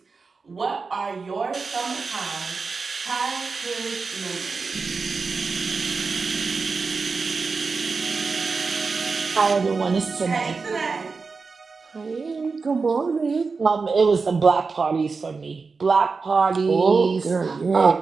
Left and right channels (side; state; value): left; quieter; 4.5 dB